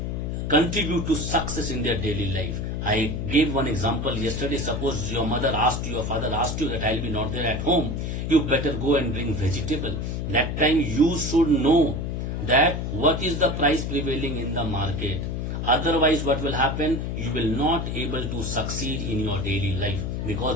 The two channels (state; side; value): noise; left; hum, 3 dB below the sound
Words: contribute to success in their daily life. I gave one example yesterday. Suppose your mother asked you, your father asked you that I'll be not there at home. You better go and bring vegetable. That time you should know that what is the price prevailing in the market. Otherwise, what will happen? You will not able to succeed in your daily life